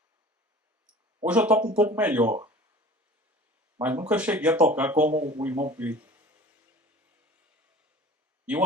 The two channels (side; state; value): both; normal; correlation 0.43